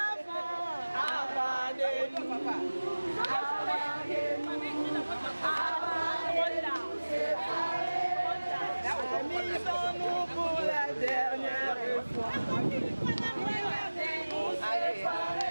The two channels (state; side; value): inverted; both; correlation -1.00